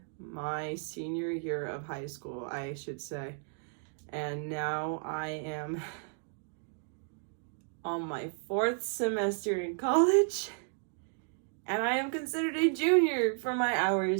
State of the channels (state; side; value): silent; left; 56 dB below the other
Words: my senior year of high school, I should say. And now I am on my 4th semester in college. And I am considered a junior for my